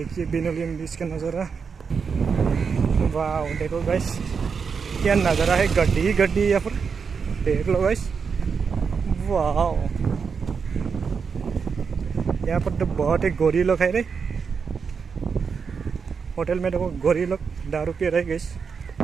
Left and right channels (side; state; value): left; quieter; 5.8 dB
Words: पैनोलिम बीच का नज़ारा, वाह देखो गाइस क्या नज़ारा है। गड्डी ही गड्डी है यहाँ पर, देख लो गाइस, वाह। यहाँ पर तो बहुत ही गोरी लोग है रे। होटल में देखो गोरी लोग दारू पी रहे गाइस।